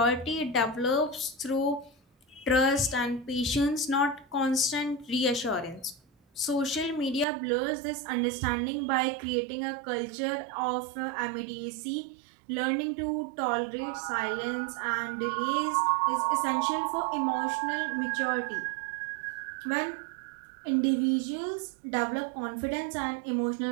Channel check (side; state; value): left; drops out; at 7.2 s